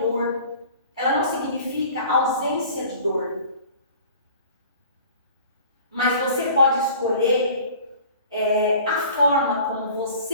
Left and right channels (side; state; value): both; inverted; correlation -0.46